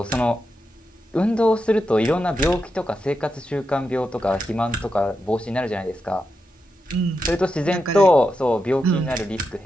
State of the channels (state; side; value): normal; both; correlation 0.87